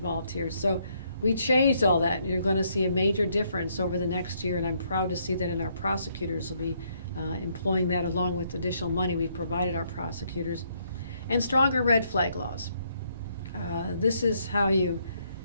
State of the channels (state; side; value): inverted; both; correlation -0.72